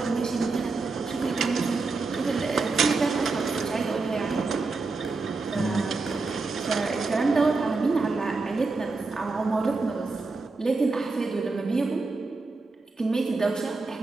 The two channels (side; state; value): left; quieter; 3.8 dB